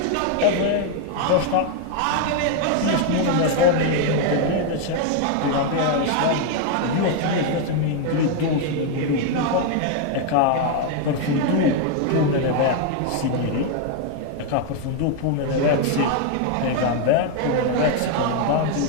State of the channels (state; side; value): different; both; correlation 0.00